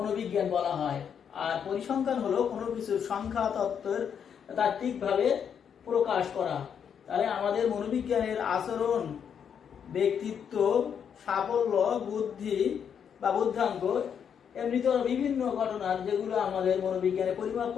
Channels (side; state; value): right; quieter; 7.8 dB